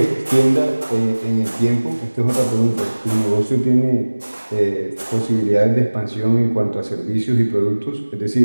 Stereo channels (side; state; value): both; inverted; correlation -1.00